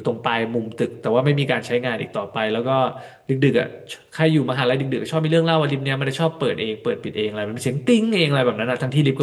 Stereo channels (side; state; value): both; identical; correlation 1.00